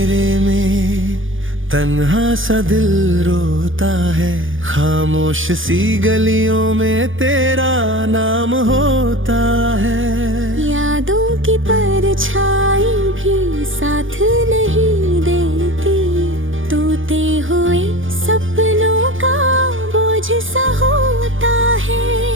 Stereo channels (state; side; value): late; left; 0.57 ms